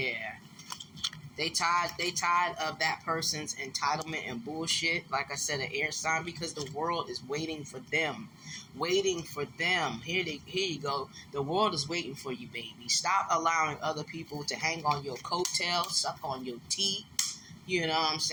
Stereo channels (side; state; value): both; identical; correlation 1.00